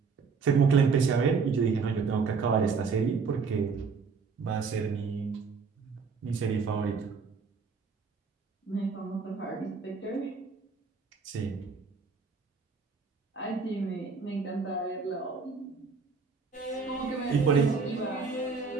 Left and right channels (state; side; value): quieter; left; 5.1 dB